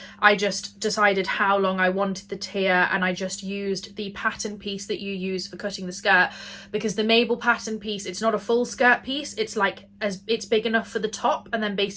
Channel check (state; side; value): identical; both; correlation 1.00